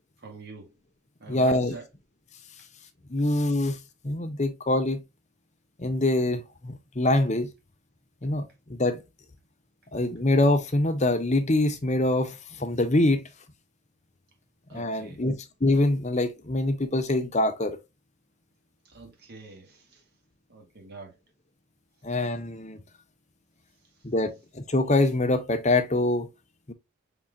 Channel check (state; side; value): normal; both; correlation 0.51